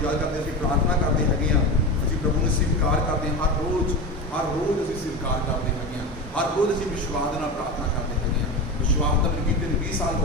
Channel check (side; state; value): both; normal; correlation 0.23